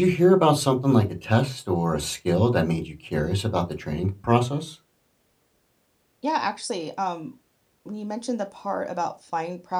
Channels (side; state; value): both; identical; correlation 1.00